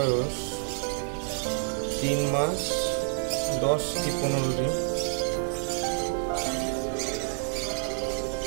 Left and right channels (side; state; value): left; silent; 59 dB below the other